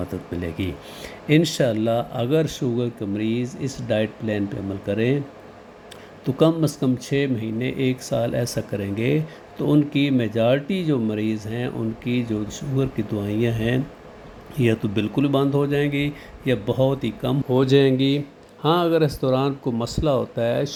ملے گی انشاءاللہ۔ اگر شوگر کے مریض اس ڈائٹ پلان پہ عمل کریں تو کم از کم 6 مہینے 1 سال ایسا کریں گے تو ان کی میجارٹی جو مریض ہیں ان کی جو شوگر کی دوائیاں ہیں یا تو بالکل بند ہو جائیں گی یا بہت ہی کم ہو جائیں گی۔ ہاں اگر اس دوران کوئی مسئلہ ہوتا ہے،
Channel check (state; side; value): identical; both; correlation 1.00